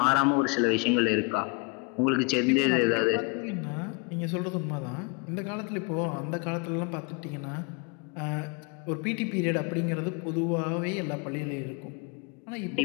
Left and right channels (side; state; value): right; quieter; 30.6 dB